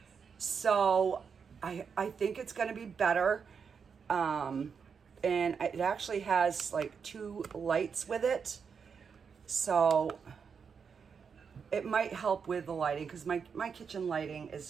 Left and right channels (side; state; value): left; quieter; 6.2 dB